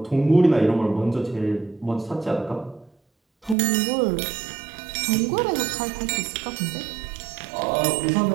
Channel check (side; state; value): left; drops out; at 3.6 s